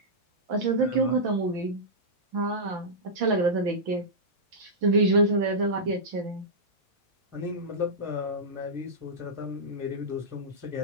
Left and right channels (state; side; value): late; left; 6.0 ms